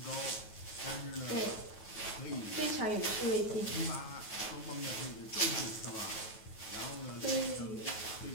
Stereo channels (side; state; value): right; late; 9.3 ms